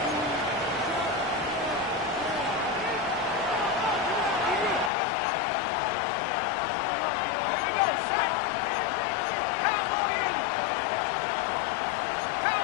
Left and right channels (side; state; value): right; drops out; at 4.9 s